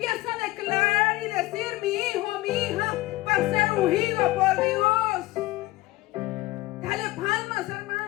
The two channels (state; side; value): quieter; right; 19.1 dB